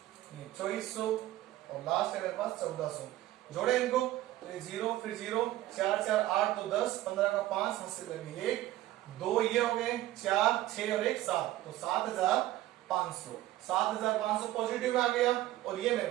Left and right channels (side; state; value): left; quieter; 15.3 dB